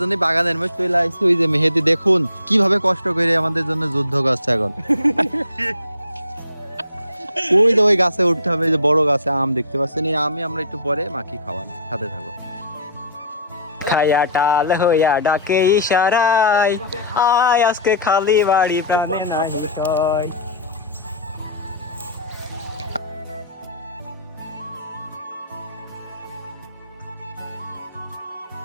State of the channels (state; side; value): inverted; both; correlation -0.38